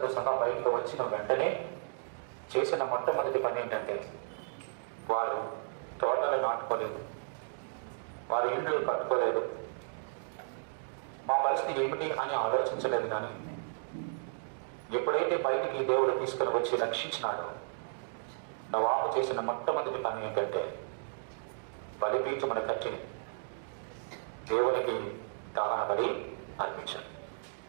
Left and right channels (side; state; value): left; silent; digital silence